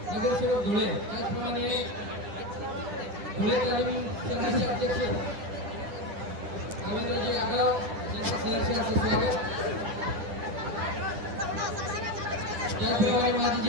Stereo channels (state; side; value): late; left; 10 ms